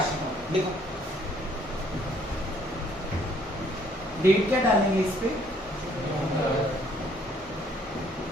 account। देखो डेट क्या डालेंगे इस पे,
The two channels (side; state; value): both; normal; correlation 0.63